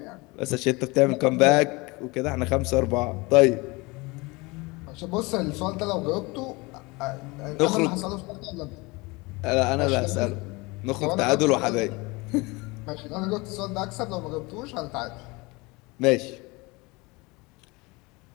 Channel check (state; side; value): quieter; right; 24.9 dB